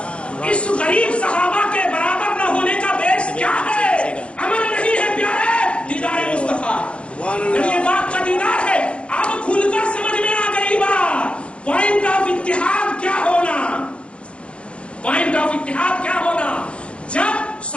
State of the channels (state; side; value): late; right; 0.060 ms